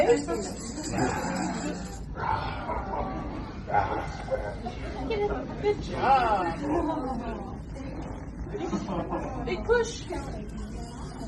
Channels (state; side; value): identical; both; correlation 1.00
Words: Good job. Big push.